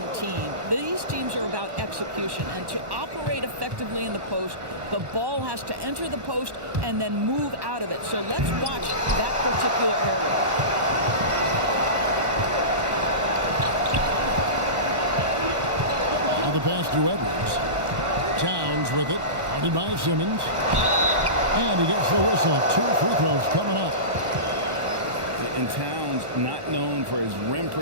team. These teams are about execution, and to operate effectively in the post, the ball has to enter the post and then move out of it. So let's watch that particular area. Now the pass to Edwards. Towns with it, guarded by Simmons. And he gets the whistle. 2 free throws coming up. And Towns, not known for his rim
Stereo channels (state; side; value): late; left; 1.1 ms